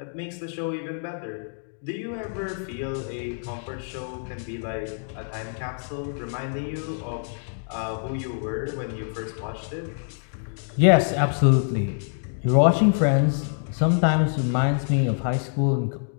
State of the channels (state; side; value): silent; right; digital silence